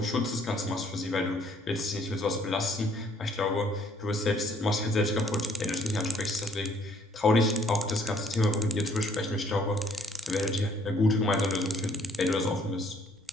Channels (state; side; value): normal; both; correlation 0.63